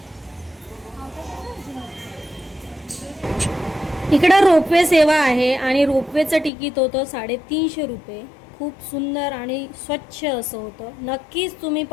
इकडं रोपवे सेवा आहे आणि रोपवेचं तिकीट होतं 350 रुपये. खूप सुंदर आणि स्वच्छ असं होतं. नक्कीच तुम्ही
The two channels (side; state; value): right; drops out; at 6.5 s